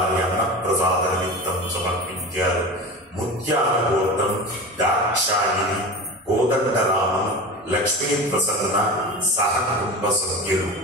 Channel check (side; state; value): both; normal; correlation 0.30